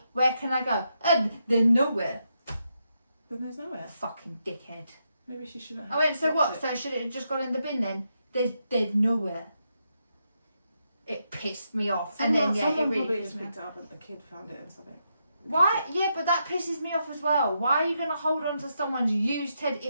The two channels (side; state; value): both; inverted; correlation -0.82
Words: Where can I go? They're nowhere. Then there's nowhere. Fucking dickhead. Maybe she shouldn't have. I went, so dropped what? it. So should it have just gone in the bin then? There's nowhere. It pissed me off. Someone, and then yeah, it someone really probably pissed just me picked off. it up and the kid found it or something. Why? Yeah, but that pisses me off as well. Why are you gonna hold on to someone's used teddy?